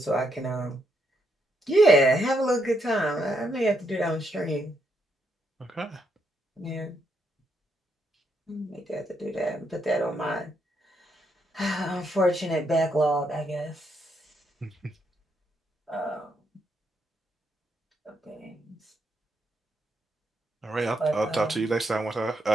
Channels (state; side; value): normal; both; correlation 0.77